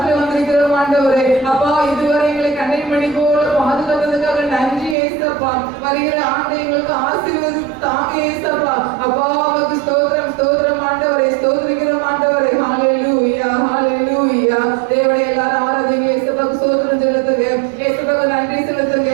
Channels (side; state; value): left; drops out; at 5.0 s